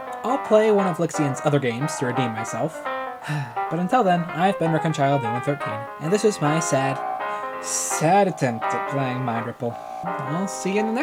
I'll play one of Lixion's other games to redeem myself. But until then, I've been Reconciled A113, and this is my sad attempt at playing Mind Ripple. I'll see you in the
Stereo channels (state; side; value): identical; both; correlation 1.00